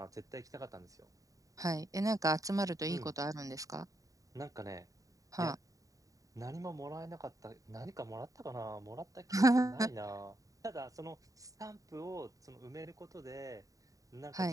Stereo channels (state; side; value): late; left; 0.16 ms